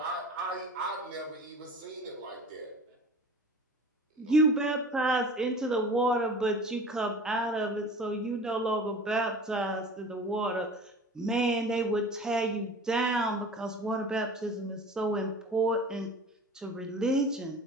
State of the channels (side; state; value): both; normal; correlation 0.40